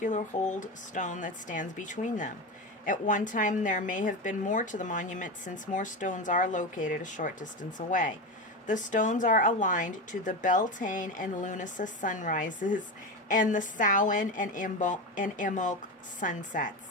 hold stone that stands between them. At one time there may have been more to the monument, since more stones are located a short distance away. The stones are aligned to the Beltane and Lunasa sunrises and the Samhain and Imbolc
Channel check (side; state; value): both; normal; correlation 0.20